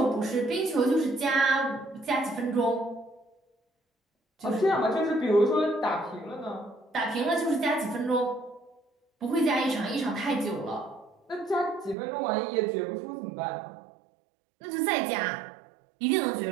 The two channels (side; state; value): left; drops out; at 12.0 s